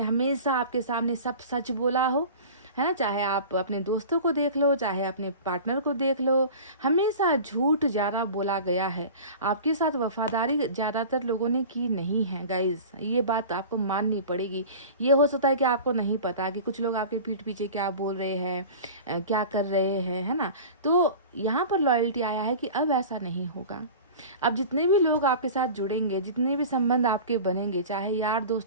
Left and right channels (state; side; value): inverted; both; correlation -0.37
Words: हमेशा आपके सामने सब सच बोला हो, है ना। चाहे आप अपने दोस्तों को देख लो, चाहे अपने पार्टनर को देख लो, हमेशा झूठ ज़्यादा बोला गया है। आपके साथ वफादारी ज़्यादातर लोगों ने की नहीं है गाइस, ये बात आपको माननी पड़ेगी। ये हो सकता है कि आपको नहीं पता कि कुछ लोग आपके पीठ पीछे क्या बोल रहे हैं, क्या कर रहे हैं, है ना। तो यहाँ पर लॉयल्टी आया है कि अब ऐसा नहीं होगा। अब जितने भी लोग आपके साथ जुड़ेंगे, जितने भी संबंध आपके बनेंगे, चाहे यार